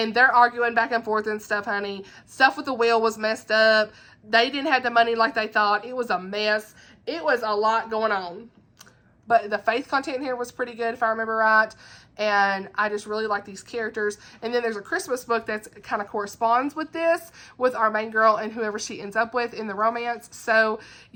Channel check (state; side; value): identical; both; correlation 1.00